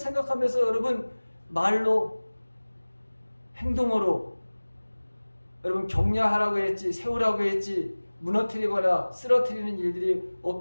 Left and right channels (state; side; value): inverted; both; correlation -1.00